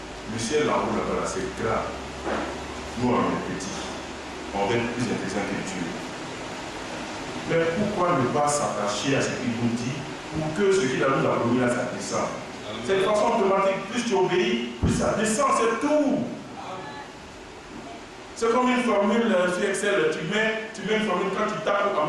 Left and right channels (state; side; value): identical; both; correlation 1.00